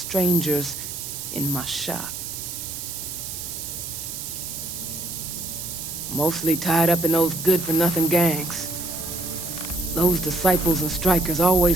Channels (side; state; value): right; noise; hiss, 7 dB below the sound